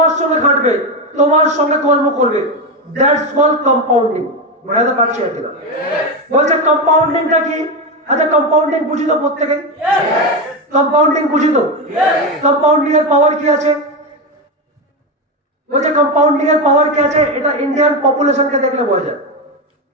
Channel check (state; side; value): normal; both; correlation 0.13